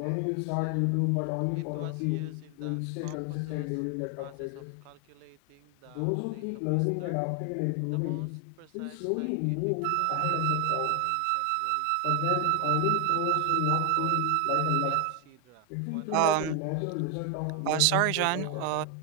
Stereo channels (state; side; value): different; both; correlation 0.00